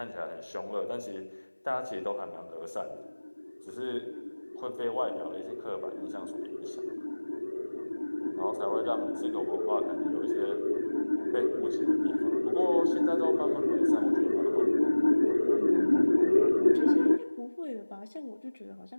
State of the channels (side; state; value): both; inverted; correlation -1.00